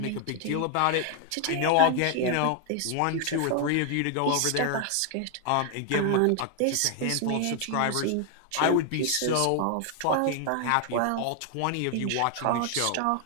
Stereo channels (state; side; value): different; both; correlation 0.00